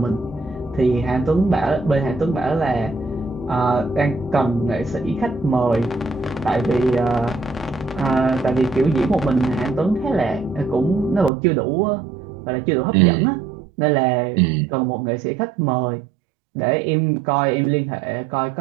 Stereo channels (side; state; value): left; drops out; at 11.3 s